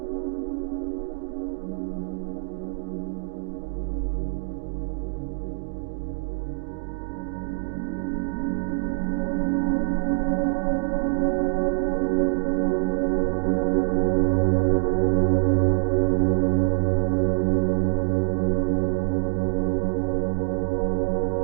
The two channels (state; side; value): quieter; left; 36.7 dB